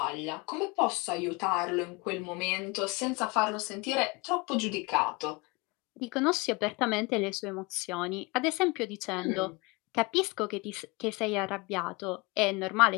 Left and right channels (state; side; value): quieter; right; 26.2 dB